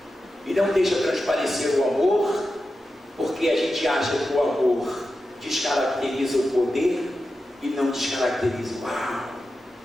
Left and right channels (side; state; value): both; normal; correlation 0.91